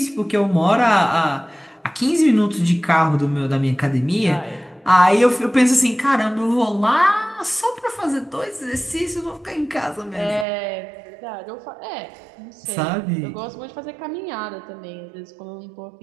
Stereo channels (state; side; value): drops out; left; at 10.5 s